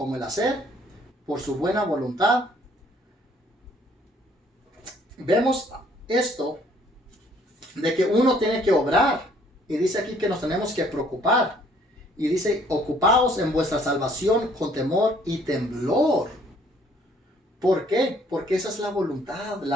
el hacer, por su buena voluntad. Vemos esto de que uno tiene que obrar, y dice aquí que nos tenemos que preocupar, y dice: ocupaos en vuestra salvación con temor y temblor. ¿Por qué? Porque esa es la voluntad,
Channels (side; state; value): both; normal; correlation 0.61